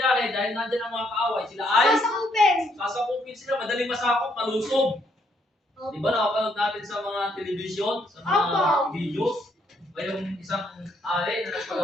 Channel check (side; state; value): both; normal; correlation 0.72